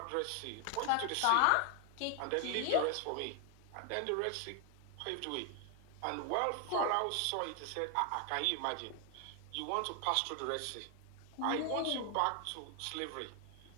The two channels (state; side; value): different; both; correlation 0.00